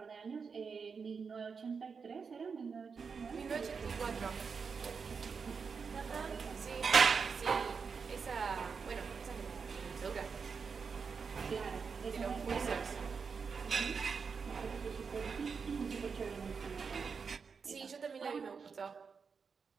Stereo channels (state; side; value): quieter; left; 5.6 dB